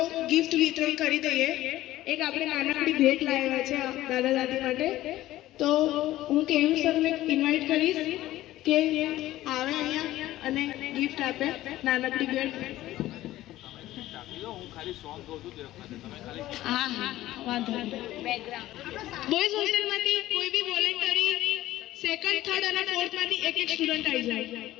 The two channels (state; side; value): quieter; right; 15.4 dB